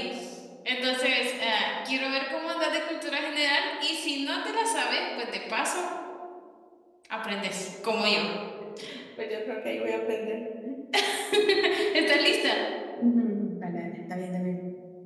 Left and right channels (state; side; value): identical; both; correlation 1.00